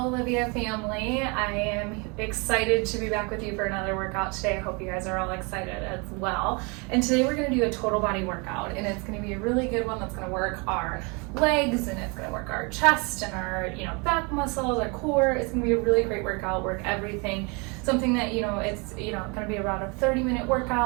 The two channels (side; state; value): left; quieter; 30.8 dB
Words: Olivia family, I am excited to be back with you for another workout today. I hope you guys are all excited as well. And today we're going to do a total body workout, and it's going to be a really good one that's going to work our legs, and it's going to work our chest and our back muscles, our core. It's going to be a really great workout, work everything. Something that it's going to be around a 30-minute